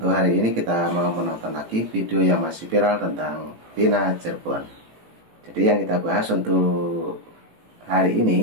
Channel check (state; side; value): late; left; 18 ms